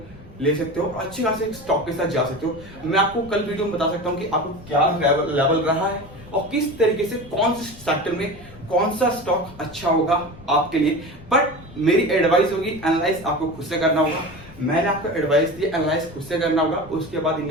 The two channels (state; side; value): noise; left; rumble, 20 dB below the sound